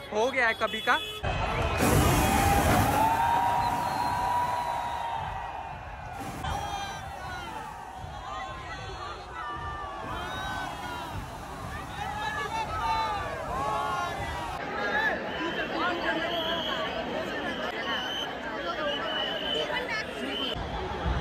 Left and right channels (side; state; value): both; identical; correlation 1.00